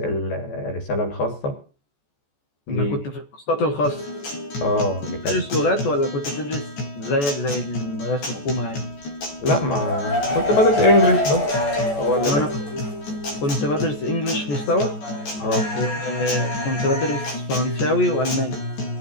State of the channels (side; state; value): right; late; 14 ms